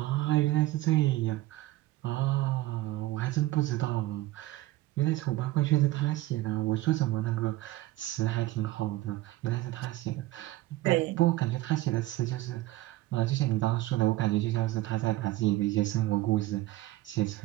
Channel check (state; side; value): quieter; left; 16.8 dB